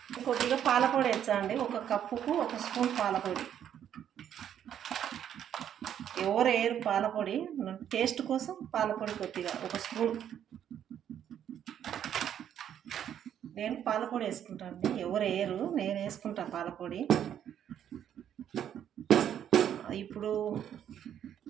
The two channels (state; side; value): quieter; left; 9.8 dB